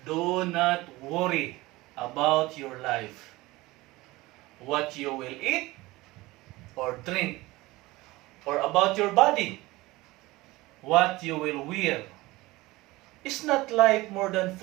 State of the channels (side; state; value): left; quieter; 20.2 dB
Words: do not worry about your life, what you will eat or drink, or about your body, what you will wear. Is not life more than